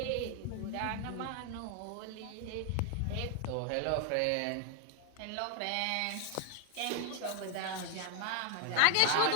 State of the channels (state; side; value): different; both; correlation 0.01